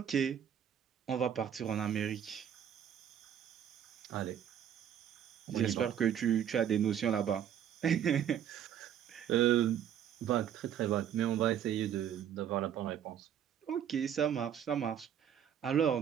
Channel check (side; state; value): left; quieter; 9.4 dB